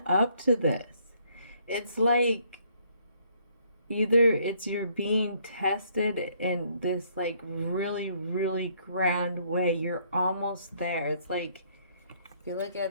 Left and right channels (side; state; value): both; inverted; correlation -0.67